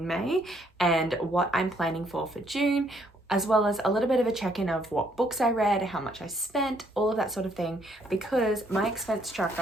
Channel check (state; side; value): normal; both; correlation 0.68